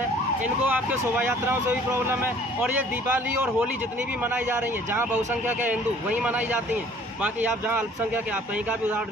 इनको आपके शोभा यात्राओं से भी प्रॉब्लम है, और ये दीपावली और होली जितनी भी मनाई जा रही हैं, जहाँ बहुसंख्यक है हिंदू वहीं मनाई जाती हैं। बाकी आप जहाँ अल्पसंख्यक है, आप कहीं का भी उदाहरण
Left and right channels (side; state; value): both; normal; correlation 0.54